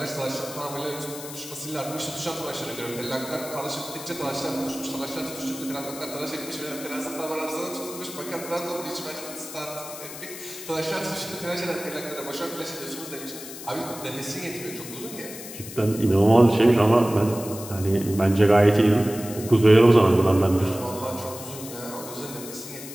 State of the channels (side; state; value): left; noise; hiss, 12 dB below the sound